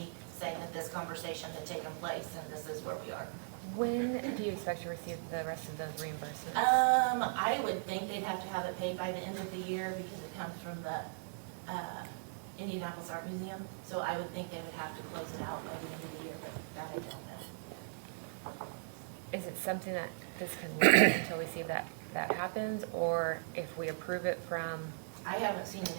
saying that this conversation had taken place, and this is where we are. When do you expect to receive the rest of those reimbursements? I would think they'd have to have it paid by the end of the year, because it comes from the, Indianapolis Art Museum, so I would think they would have to close it out by the end of the year, but that I don't know. Is it something that this can wait until we see if that happens, or if we approve it from, I haven't seen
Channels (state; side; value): silent; left; digital silence